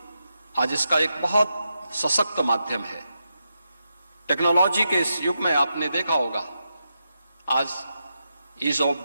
आज इसका एक बहुत सशक्त माध्यम है। टेक्नोलॉजी के इस युग में आपने देखा होगा आज ईज ऑफ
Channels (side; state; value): both; inverted; correlation -0.86